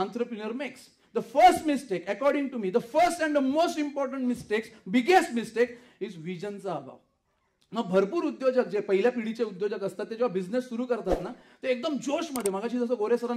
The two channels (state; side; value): identical; both; correlation 1.00